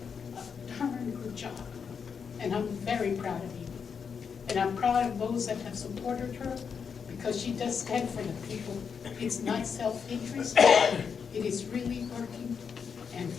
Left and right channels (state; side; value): quieter; right; 6.4 dB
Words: a darn good job, and I'm very proud of you. And I'm proud of those that have supported her, because she does stand for the people. It's not self-interest, it is really working and